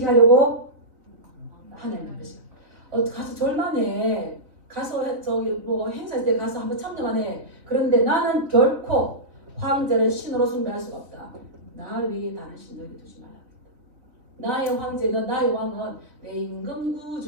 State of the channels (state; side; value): late; left; 3.4 ms